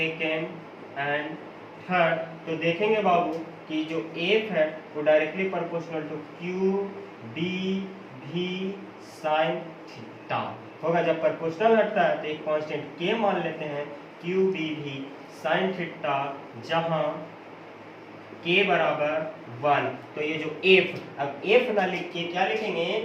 and third, तो देखेंगे बाबू कि जो एफ है वो directly proportional to Q B v sine theta होगा। जब प्रोपोर्शनल हटता है तो एक कांस्टेंट के मान लेते हैं, Q B v sine theta, जहां के बराबर 1। तो ये जो एफ, अब एफ ना लिख के क्या लिखेंगे,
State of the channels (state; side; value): identical; both; correlation 1.00